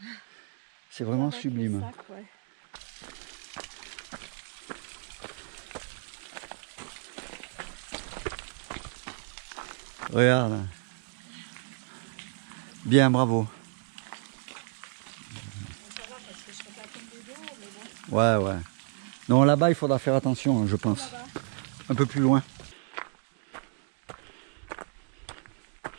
C'est vraiment avec sublime. le sac, ouais. Regarde. Bien, bravo. Ouais. Non, là-bas, il faudra faire attention, je pense. Un peu plus loin.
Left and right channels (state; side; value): silent; left; 56 dB below the other